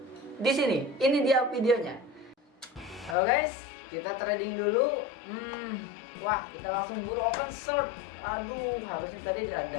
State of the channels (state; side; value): drops out; right; at 3.2 s